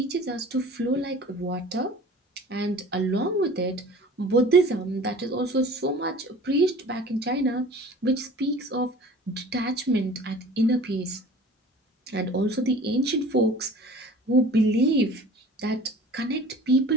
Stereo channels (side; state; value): both; normal; correlation 0.43